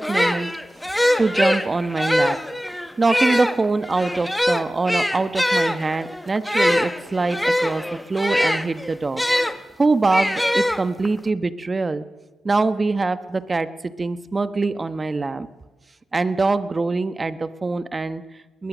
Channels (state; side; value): normal; both; correlation 0.96